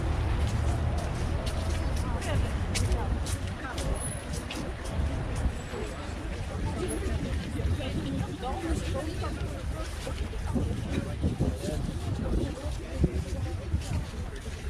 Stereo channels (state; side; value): identical; both; correlation 1.00